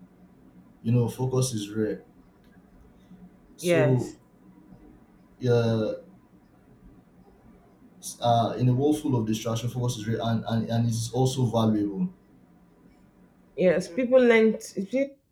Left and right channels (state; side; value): identical; both; correlation 1.00